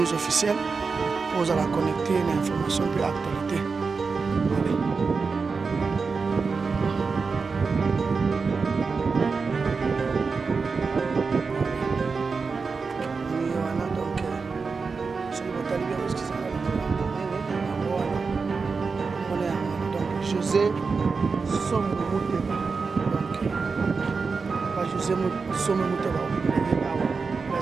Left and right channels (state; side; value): quieter; left; 4.8 dB